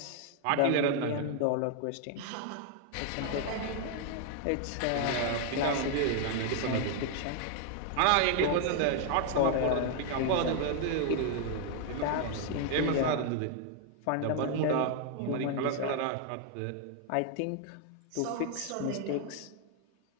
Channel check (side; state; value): both; different; correlation 0.00